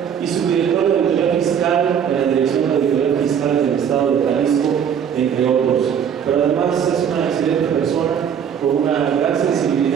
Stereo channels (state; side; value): quieter; left; 8.2 dB